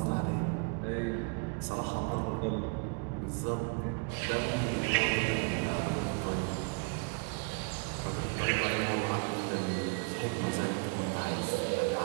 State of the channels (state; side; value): quieter; left; 36.4 dB